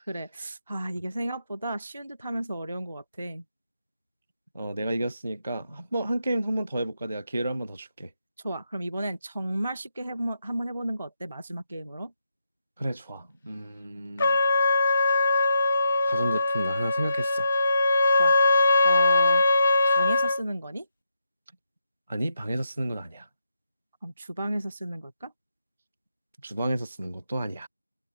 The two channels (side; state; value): both; inverted; correlation -0.84